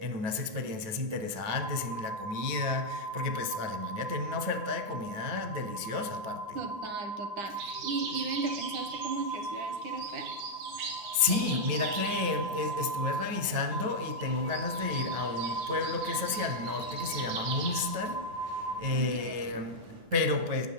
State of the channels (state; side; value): late; left; 9.3 ms